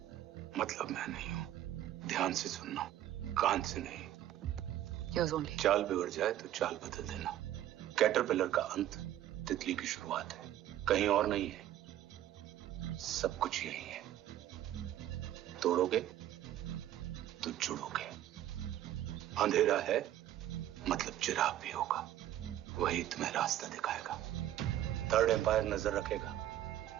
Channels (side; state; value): left; quieter; 12.6 dB